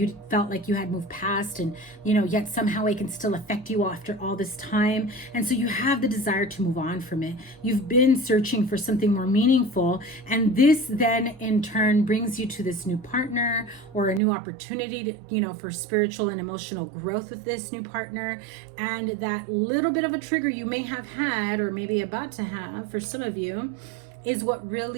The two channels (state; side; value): drops out; left; at 14.2 s